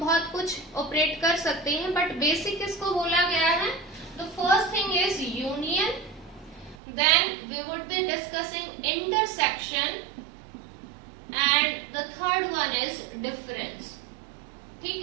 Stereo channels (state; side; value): drops out; left; at 6.8 s